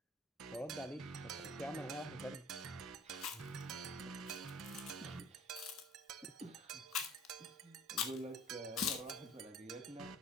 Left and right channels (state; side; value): normal; both; correlation 0.48